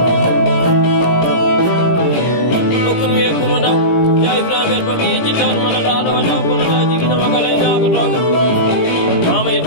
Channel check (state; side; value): late; right; 17 ms